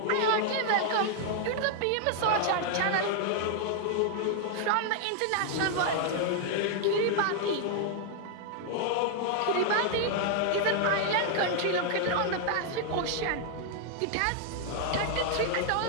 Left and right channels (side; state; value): both; different; correlation 0.00